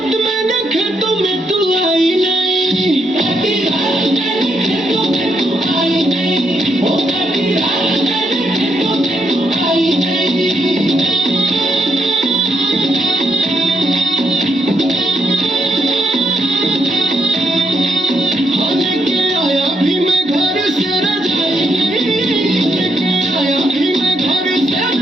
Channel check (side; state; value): both; normal; correlation 0.78